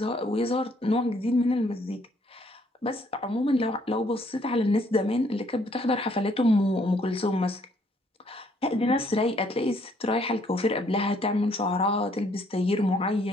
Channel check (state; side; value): normal; both; correlation 0.66